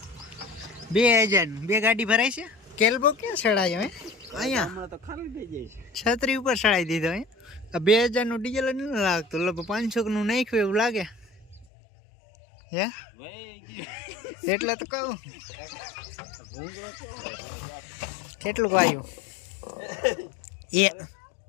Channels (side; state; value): right; drops out; at 11.7 s